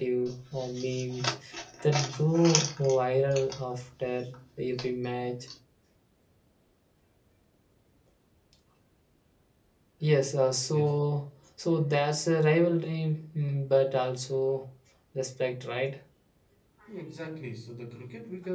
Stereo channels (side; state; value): both; identical; correlation 1.00